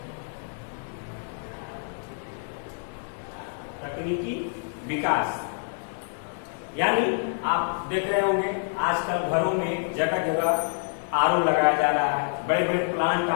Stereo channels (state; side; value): silent; right; digital silence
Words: तकनीकी विकास यानी आप देख रहे होंगे आजकल घरों में जगह जगह आरओ लगाया जा रहा है, बड़े बड़े प्लांट